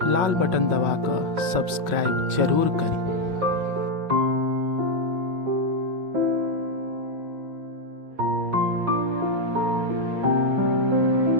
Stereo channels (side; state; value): left; late; 5.6 ms